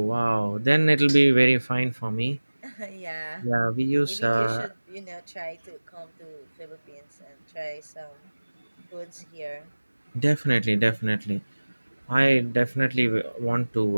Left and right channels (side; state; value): both; inverted; correlation -1.00